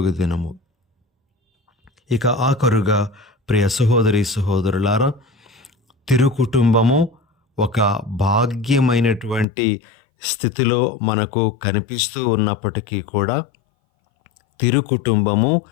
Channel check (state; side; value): drops out; right; at 9.5 s